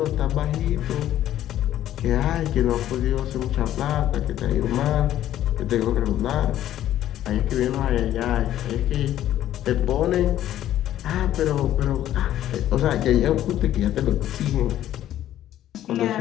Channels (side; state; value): right; quieter; 12.4 dB